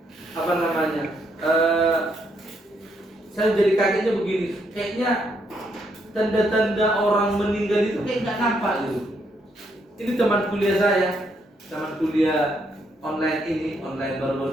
apa namanya? Saya jadi kagetnya begini. Kayaknya tanda-tanda orang meninggal itu kayak nggak nampak gitu. Ini teman kuliah saya, teman kuliah online ini, online baru-baru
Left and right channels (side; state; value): both; normal; correlation 0.75